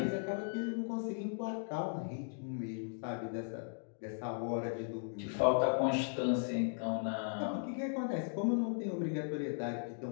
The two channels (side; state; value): right; silent; digital silence